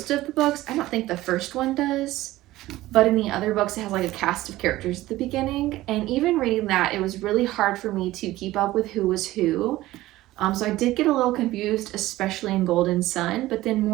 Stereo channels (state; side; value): quieter; left; 16.6 dB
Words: of the books, I don't think the first one does, but in the other books it has like a cast of characters at the beginning. And even reading that, it was really hard for me to keep up with who was who. So I did get a little confused, especially in Golden Sun, but then